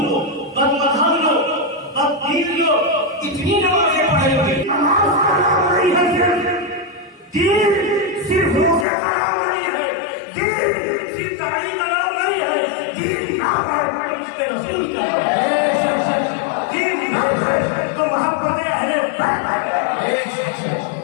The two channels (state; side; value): drops out; right; at 8.8 s